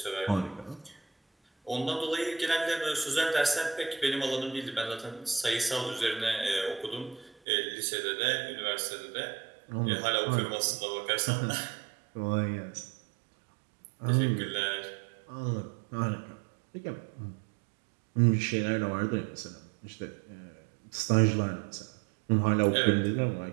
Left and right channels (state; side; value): drops out; left; at 7.4 s